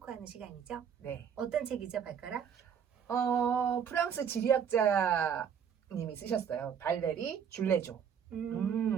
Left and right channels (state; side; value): quieter; left; 7.8 dB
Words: 시간이죠. 네. 어떤 책이죠, 발가락? 프랑스 지리학자님이 쓰셨어요. 발레리 줄레조.